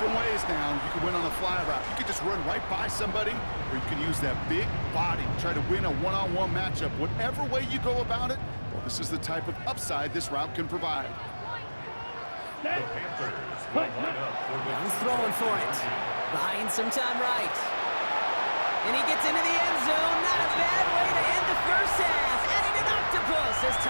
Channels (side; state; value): both; inverted; correlation -1.00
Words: ways now. You can win on a fly route. You could just run right by somebody, or you can use that big body, try to win a one-on-one matchup. Whatever way you go about it, well, this is the type of upside this route can provide. The Panthers will line up for the Young's throwing for it. Buying some time right. And he gets into the end zone. Not a bad way to end the first half. Adding an octopus as